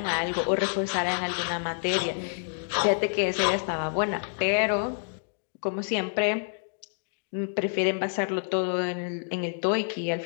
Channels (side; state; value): right; silent; digital silence